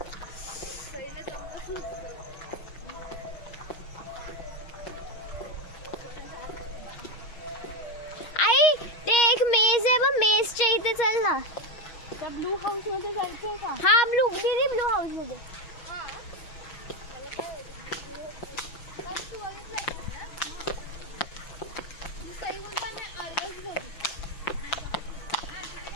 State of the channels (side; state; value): right; late; 6.3 ms